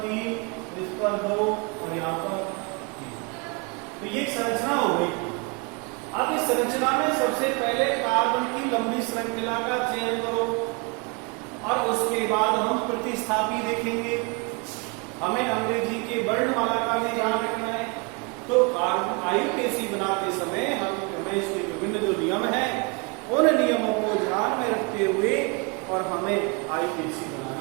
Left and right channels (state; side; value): quieter; left; 31.0 dB